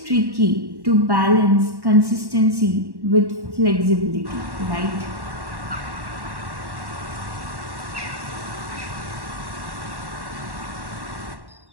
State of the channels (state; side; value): late; left; 1.1 ms